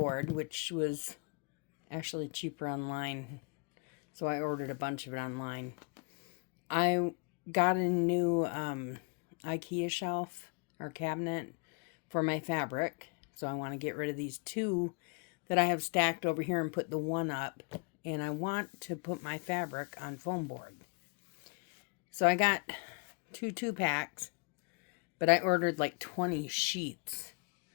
which was actually cheaper online. So I ordered a bunch of it online. I got a new IKEA shelf or cabinet for my fabric. So I want to get rid of these two that I have stacked over here and put the one up. And I want to put my fabric on foam board. So I got two packs, but I ordered like 20 sheets,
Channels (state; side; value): quieter; right; 33.1 dB